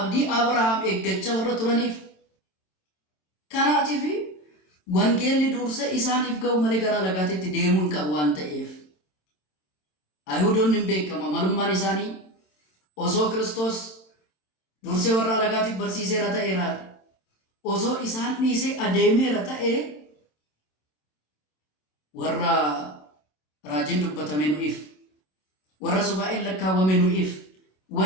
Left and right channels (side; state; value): right; late; 27 ms